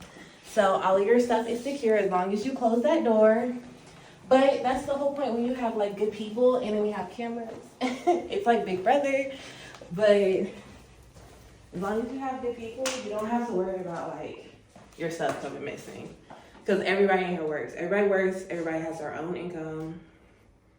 So all of your stuff is secure as long as you close that door. But that's the whole point when you have like good people and then we have cameras. It's like Big Brother. But as long as you have good people, you don't have to worry about like your stuff coming missing. Because everybody in here works. Everybody has their own income.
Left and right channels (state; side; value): identical; both; correlation 1.00